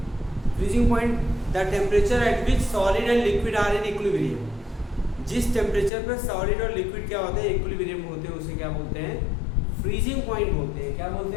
Freezing point the temperature at which solid and liquid are in equilibrium. जिस टेम्परेचर पर सॉलिड और लिक्विड क्या होते हैं? इक्विलिब्रियम में होते हैं, उसे क्या बोलते हैं? फ्रीजिंग पॉइंट बोलते हैं। क्या बोलते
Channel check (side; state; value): right; drops out; at 5.9 s